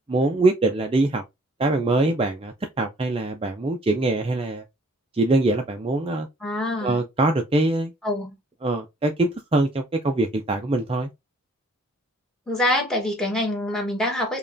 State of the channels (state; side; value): normal; both; correlation 0.58